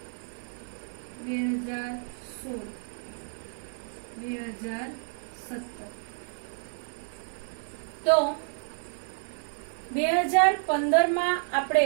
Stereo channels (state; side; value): silent; left; 58 dB below the other